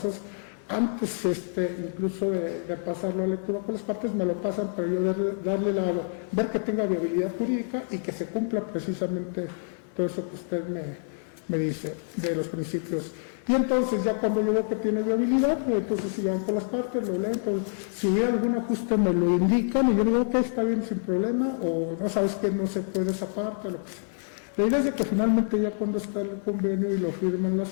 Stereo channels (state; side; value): silent; right; 57 dB below the other